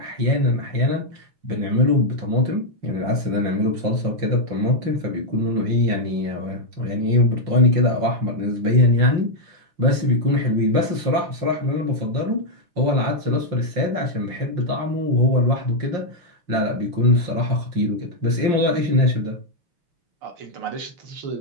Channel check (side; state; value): left; late; 5.7 ms